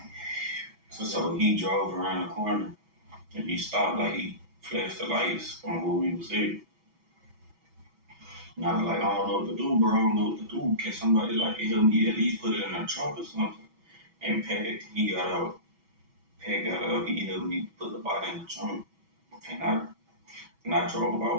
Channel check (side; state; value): left; late; 6.1 ms